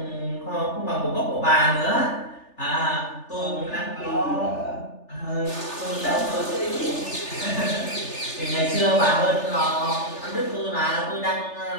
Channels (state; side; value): late; right; 3.4 ms